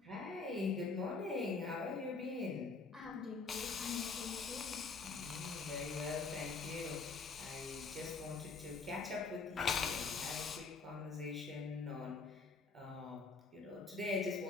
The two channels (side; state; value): right; quieter; 4.5 dB